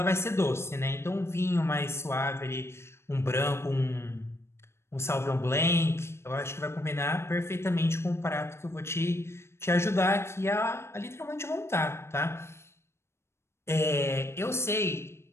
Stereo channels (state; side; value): late; right; 0.12 ms